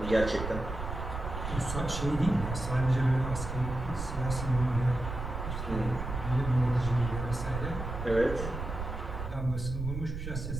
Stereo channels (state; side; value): noise; right; rumble, 6 dB below the sound